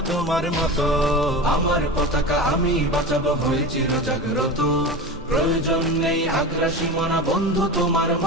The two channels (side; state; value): both; normal; correlation 0.28